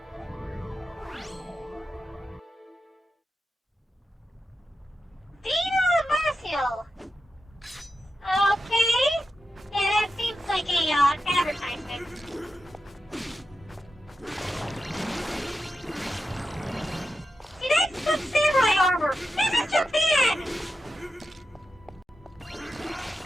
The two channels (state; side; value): normal; both; correlation 0.89